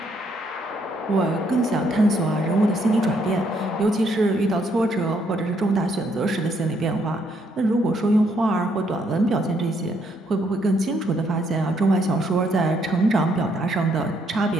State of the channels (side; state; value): both; normal; correlation 0.71